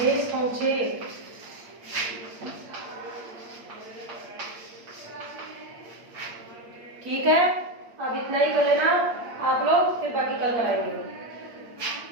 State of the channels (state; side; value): late; left; 8.6 ms